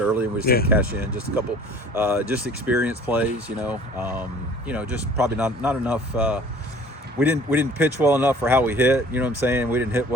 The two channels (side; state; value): both; normal; correlation 0.49